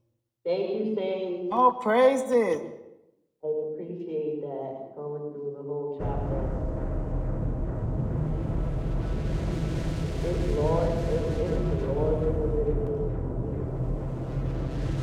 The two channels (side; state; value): both; identical; correlation 1.00